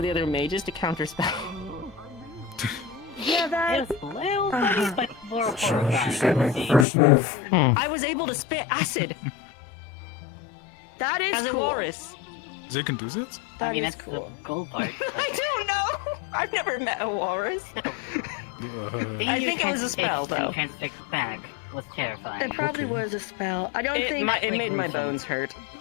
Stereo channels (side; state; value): right; drops out; at 6.9 s